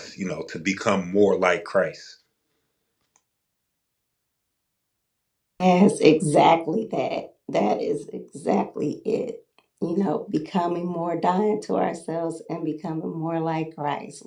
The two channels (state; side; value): identical; both; correlation 1.00